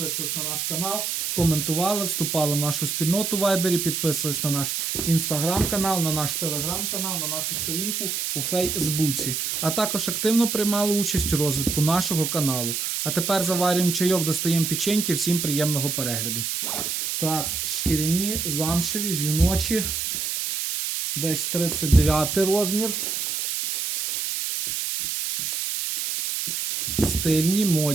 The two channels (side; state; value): right; noise; hiss, 2 dB below the sound